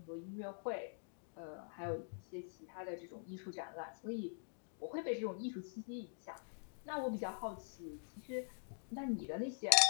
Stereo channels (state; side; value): silent; right; digital silence